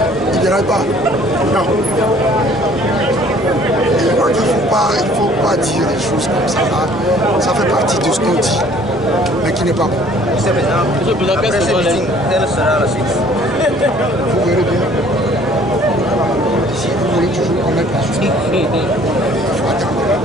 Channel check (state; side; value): normal; both; correlation 0.55